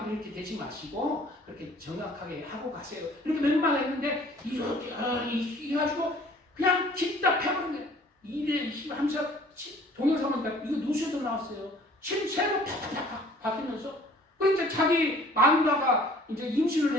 이렇게 대지 마시고 그렇게 정확하게 하고 가세요. 이렇게 몇 했는데 이렇게 해가지고 그냥 기답해버린 거예요. 이래 하면서 동영상은 이거 뉴스에도 나왔어요. 침새로 팍팍팍 바뀌면서 그러니까 자기 마누라가 이제 임신을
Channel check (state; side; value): normal; both; correlation 0.53